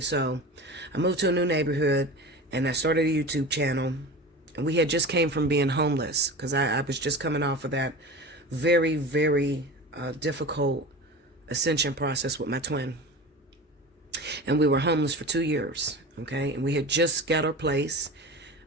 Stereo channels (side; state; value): both; normal; correlation 0.32